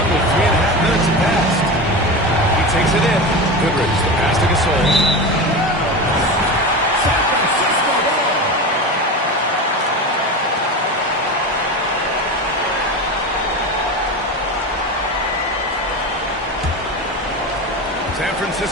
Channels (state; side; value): normal; both; correlation 0.24